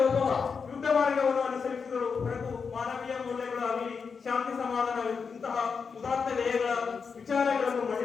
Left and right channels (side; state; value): right; quieter; 5.6 dB